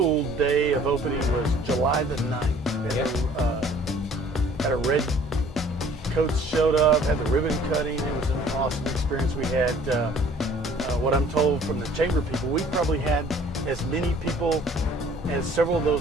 day of opening was July the 9th. Had a red coats showed up, had the ribbon cutting. It was an awesome experience. We had, what I'm told from the chamber people, we probably had as many people as several of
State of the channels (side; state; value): both; normal; correlation 0.54